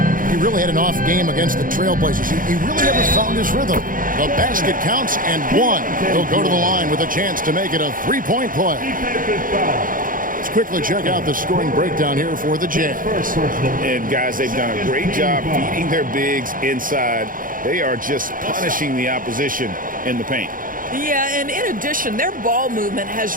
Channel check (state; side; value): late; left; 0.40 ms